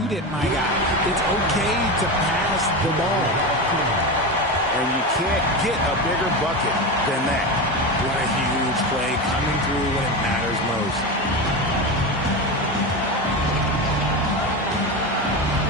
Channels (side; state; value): both; normal; correlation 0.20